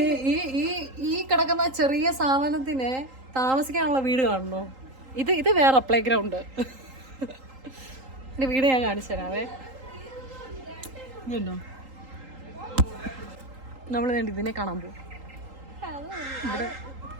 ഈ കിടക്കുന്ന ചെറിയ സാധനത്തിന് താമസിക്കാനുള്ള വീട് കാണണോ? ഇത് വേറെ പ്ലേ ഗ്രൗണ്ട്. എന്റെ വീട് ഞാൻ കാണിച്ചു തരാവേ. ഇതുണ്ടോ, നമ്മൾ ഇതിനെ കാണാൻ പോകും.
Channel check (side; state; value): left; late; 3.8 ms